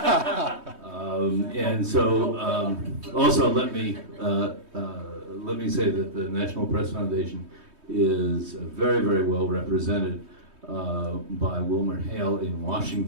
And so, also let me say that the National Press Foundation is very, very well represented by WilmerHale in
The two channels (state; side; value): late; left; 3.2 ms